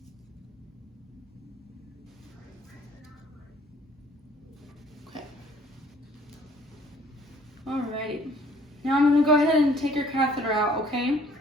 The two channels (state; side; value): normal; both; correlation 0.58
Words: Okay. Alrighty. Now I'm gonna go ahead and take your catheter out, okay?